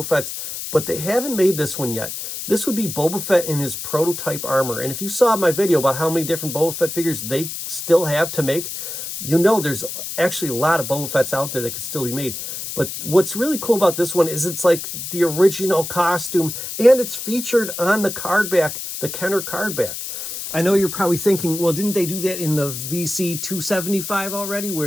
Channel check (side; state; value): left; noise; hiss, 7 dB below the sound